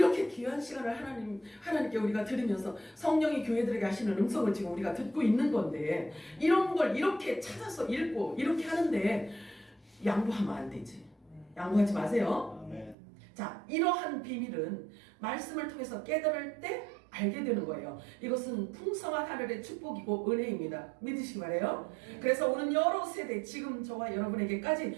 귀한 시간을 하나님께 우리가 드리면서 성령이 교회들에게 하시는 음성을 지금 우리가 듣고 있는 건데 이런 걸 이렇게 찾아서 읽고 이렇게 하는데 양보하면 안 되지. 양보하지 마세요. 아멘. 자, 이러한 비밀은 말씀을 통해서 깨달을 때 알게 되는 거예요. 이것은 풍성한 하늘의 축복이고 은혜입니다. 믿으시기 바래요. 그래서 오늘 여러 세대 지금 저와 여러분에게까지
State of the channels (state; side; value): drops out; left; at 13.0 s